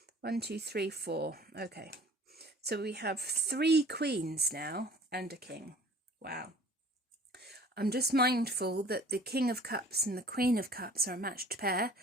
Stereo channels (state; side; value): normal; both; correlation 0.49